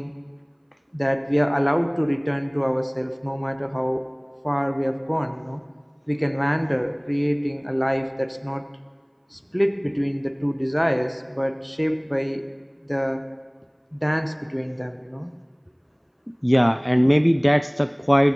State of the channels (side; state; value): both; identical; correlation 1.00